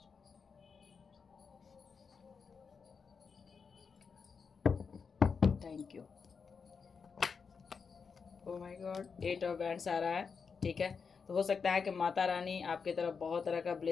Thank you. Oh my God, 8 of wands आ रहा है, ठीक है। तो हो सकता है कि माता रानी आपके तरफ बहुत तरह का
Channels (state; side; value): quieter; right; 5.6 dB